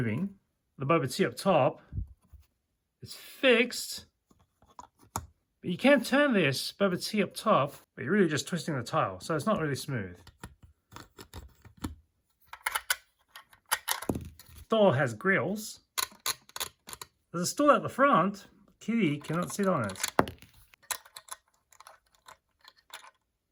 The boba tea up top is fixed. But you can turn this boba tea up top, but you're really just twisting the tile, so it's not really smooth. Door has grills. There's a stool at the front. Kitty cannot sit on it.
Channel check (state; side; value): identical; both; correlation 1.00